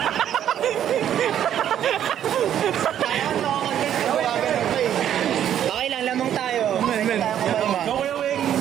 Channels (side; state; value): left; quieter; 10.3 dB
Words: Okay lang, lamang tayo. Men.